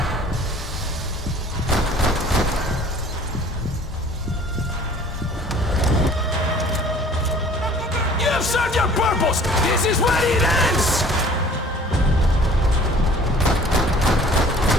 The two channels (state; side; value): normal; both; correlation 0.50